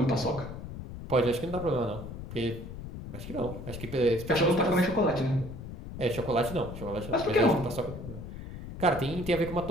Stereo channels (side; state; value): left; noise; rumble, 10 dB below the sound